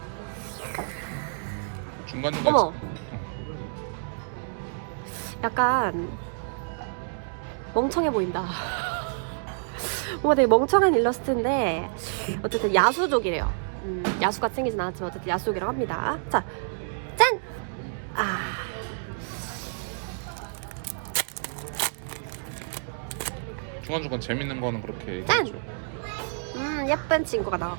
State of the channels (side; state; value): left; silent; digital silence